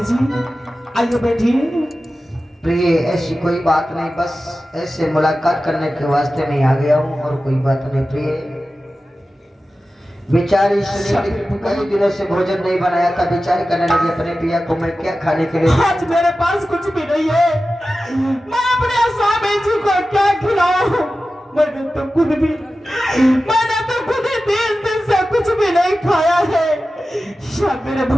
आइए बैठिए। प्रिय ऐसी कोई बात नहीं, बस ऐसे मुलाकात करने के वास्ते नहीं आ गया हूँ और कोई बात नहीं। प्रिय बेचारी सुनीति कई दिनों से भोजन नहीं बनाया था, बेचारी करने लगी अपने पिया को मैं क्या खाने के लिए। आज मेरे पास कुछ भी नहीं है, मैं अपने स्वामी जी को क्या खिलाऊं? मैंने तो खुद ही 3 दिन से कुछ भी नहीं खाया है। या मेरे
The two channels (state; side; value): normal; both; correlation 0.94